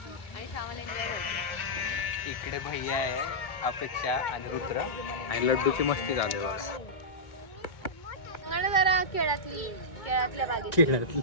इकडे भैया आहे, अपेक्षा आणि रुद्र आणि लड्डूची मस्ती झाली बघा. जरा केळातल्या बागेत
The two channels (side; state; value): right; late; 2.2 ms